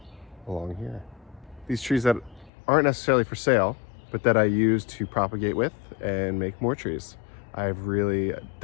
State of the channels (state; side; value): drops out; right; at 2.5 s